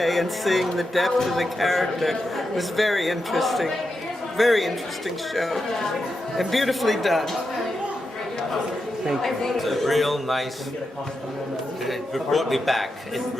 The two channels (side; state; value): both; normal; correlation 0.87